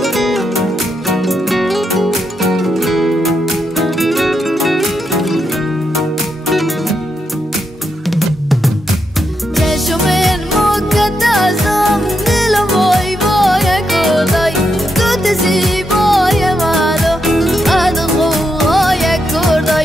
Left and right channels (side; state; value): both; normal; correlation 0.82